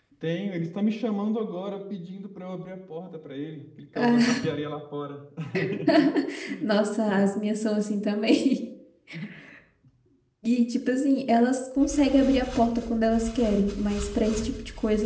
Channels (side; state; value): both; identical; correlation 1.00